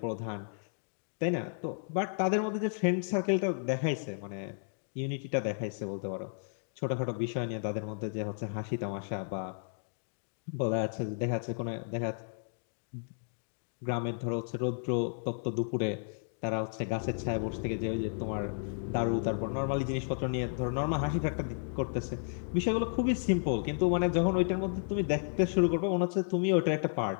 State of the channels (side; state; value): right; silent; digital silence